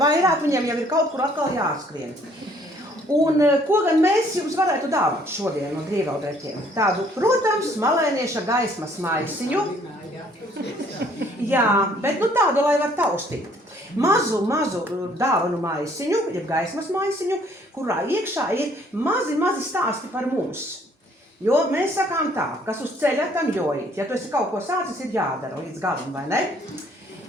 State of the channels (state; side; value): normal; both; correlation 0.62